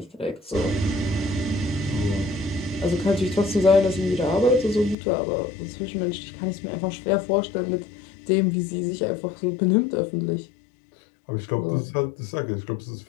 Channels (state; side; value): drops out; right; at 5.0 s